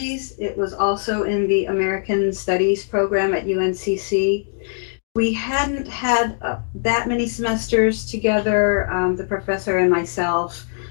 It was also in the American Studies program at UNCC. We hadn't had that many semesters together, the professor and myself,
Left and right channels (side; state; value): right; silent; digital silence